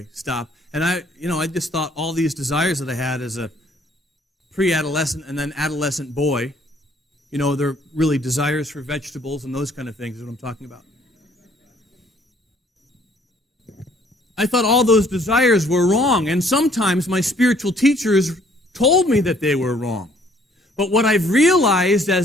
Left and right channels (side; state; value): both; normal; correlation 0.61